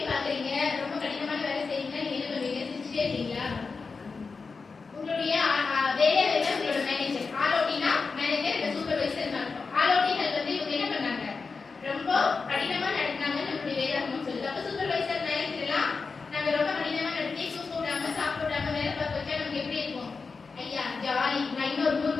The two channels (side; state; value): right; quieter; 4.6 dB